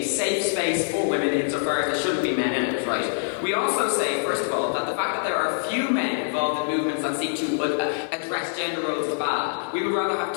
safe space for women insofar as there shouldn't be men in it, right? We also say, first of all, that the fact that there are few men involved in movements that seek to address gender roles is bad. We would rather have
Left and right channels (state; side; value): silent; right; 62 dB below the other